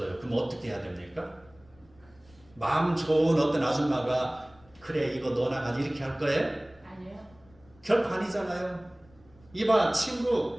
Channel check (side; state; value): left; noise; rumble, 28 dB below the sound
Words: 그럼 어떻게 해야 됩니까? 마음 좋은 어떤 아줌마가 그래 이거 너나 가지 이렇게 할 거예요? 아니요. 결코 아니잖아요. 이봐